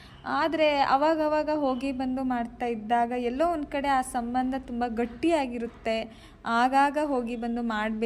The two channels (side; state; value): both; identical; correlation 1.00